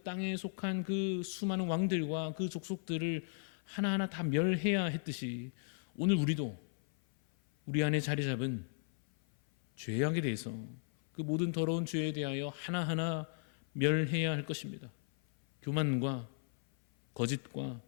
땅에 속한 그 수많은 왕들과 그 족속들을 하나하나 다 멸해야 했듯이, 오늘 우리도 우리 안에 자리 잡은 죄악에 대해서, 그 모든 더러운 죄에 대하여 하나하나 멸해야 할 것입니다. 교만과 거짓과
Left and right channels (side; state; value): right; silent; 54 dB below the other